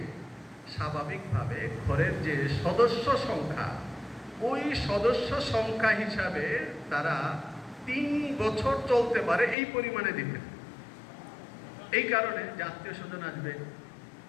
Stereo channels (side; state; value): right; drops out; at 9.6 s